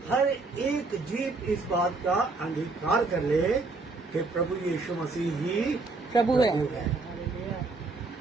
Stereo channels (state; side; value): quieter; left; 3.7 dB